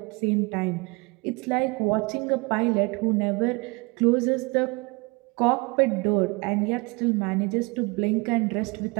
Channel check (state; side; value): quieter; left; 27.3 dB